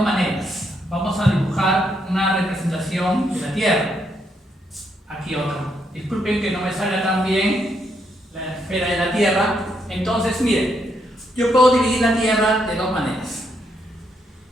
maneras. Vamos a dibujar una representación de la Tierra. Aquí otra. Disculpen que no me salga tan bien la esfera de la Tierra. Entonces, miren, yo puedo dividir la Tierra de dos maneras.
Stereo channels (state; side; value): normal; both; correlation 0.76